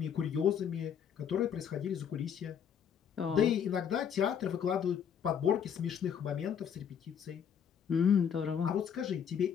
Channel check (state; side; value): quieter; right; 8.0 dB